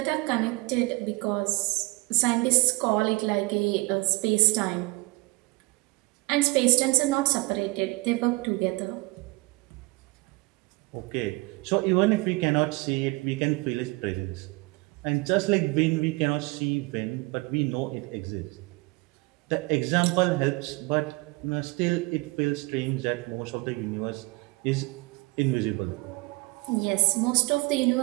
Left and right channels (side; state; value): left; quieter; 24.6 dB